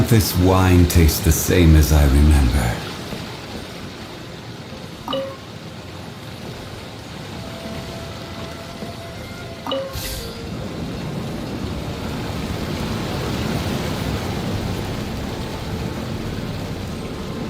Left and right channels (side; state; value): both; identical; correlation 1.00